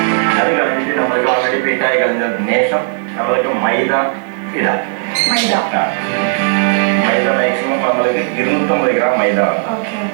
അത് കഴിഞ്ഞിട്ട് നമ്മൾക്ക് ഓൾറെഡി ഫിറ്റായി കഴിഞ്ഞതിന് ശേഷം നമ്മൾക്ക് മൈദ ഇടാം. മൈദ മാക്സിമം നമ്മൾക്ക് 250 ഗ്രാം മൈദ വേണം.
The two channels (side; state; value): left; silent; digital silence